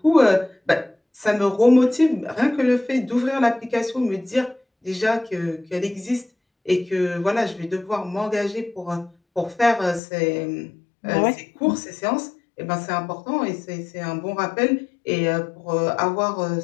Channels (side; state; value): right; drops out; at 10.0 s